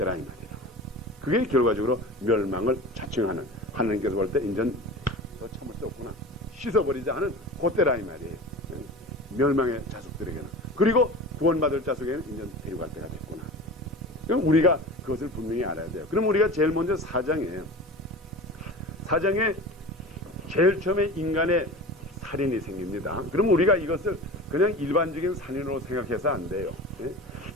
이 말이에요. 그게 결과적으로 멸망을 자청하는 하나님께서 볼 때 인전 더 참을 수 없구나. 씻어버리자 하는 그때라 이 말이에요. 멸망의 자손들에게는. 그리고 구원받을 자손에게는 인전 데려갈 때가 됐구나. 그럼 우리가 그것을 분명히 알아야 돼요. 그럼 우리가 제일 먼저 4장에 제일 처음에 인간의 살인이 생깁니다. 그럼 우리가 이것을 그냥 일반적인 살인으로 생각해서 안 돼요.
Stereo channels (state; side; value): normal; both; correlation 0.34